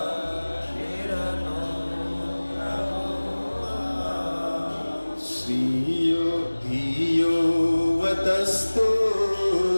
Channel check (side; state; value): both; inverted; correlation -1.00